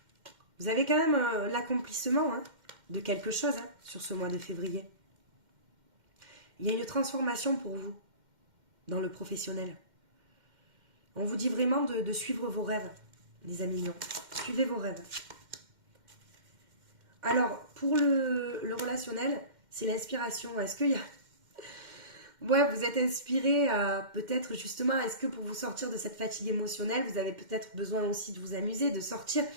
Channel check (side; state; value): left; late; 2.1 ms